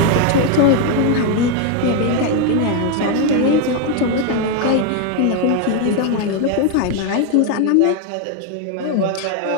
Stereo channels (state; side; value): different; both; correlation 0.01